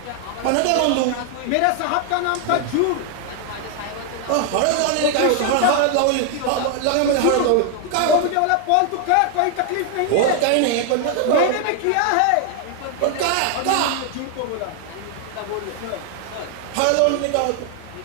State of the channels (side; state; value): both; different; correlation 0.00